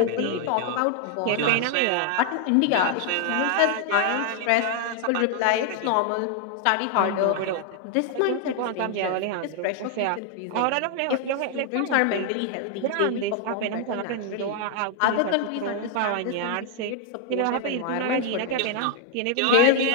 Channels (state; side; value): different; both; correlation 0.00